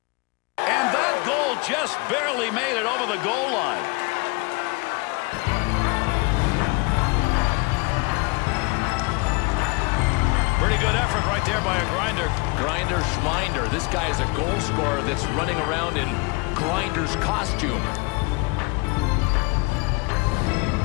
And that goal just barely made it over the goal line. Pretty good effort right there by a grinder. Grinder Schminder. This guy is a goal scorer that's running around in Grinder's costume.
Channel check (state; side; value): quieter; right; 27.9 dB